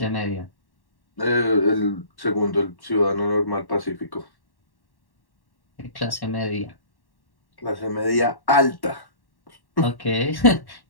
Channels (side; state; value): right; late; 1.1 ms